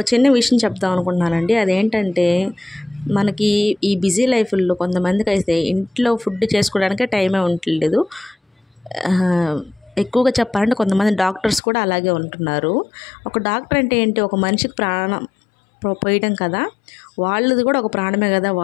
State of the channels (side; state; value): right; drops out; at 11.6 s